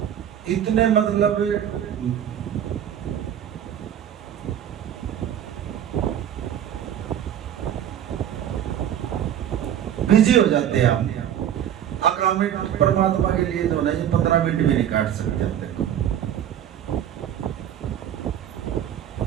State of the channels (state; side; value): quieter; left; 10.2 dB